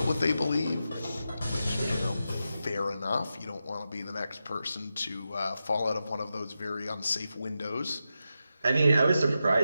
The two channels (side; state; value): both; inverted; correlation -0.89